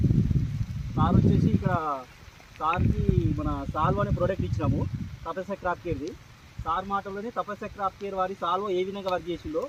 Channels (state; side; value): identical; both; correlation 1.00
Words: సార్ వచ్చేసి ఇక్కడ సార్కి మన సాల్వ్ అనే ప్రోడక్ట్ ఇచ్చినాము తపస్య క్రాఫ్ట్ కేర్ది. సార్ మాటల్లోనే తపస్య క్రాఫ్ట్ కేర్ వారి సాల్వ్ ఏ విధంగా వర్క్ చేసిందో